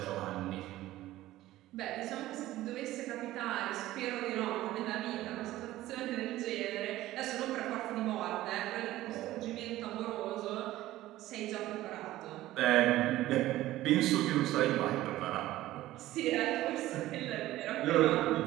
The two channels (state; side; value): quieter; left; 15.6 dB